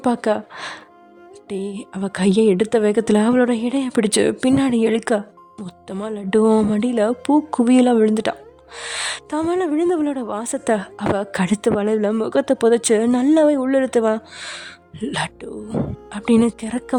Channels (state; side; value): identical; both; correlation 1.00